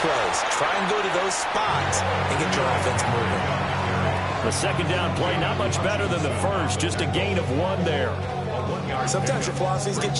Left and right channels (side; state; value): both; identical; correlation 1.00